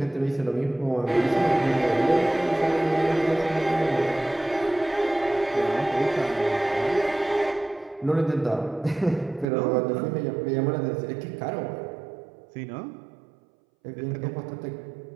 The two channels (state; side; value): drops out; left; at 9.5 s